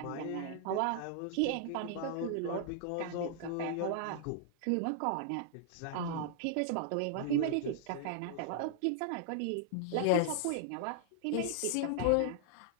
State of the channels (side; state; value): both; different; correlation -0.01